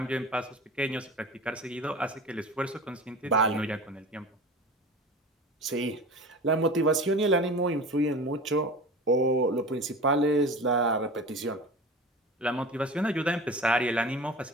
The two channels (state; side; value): normal; both; correlation 0.34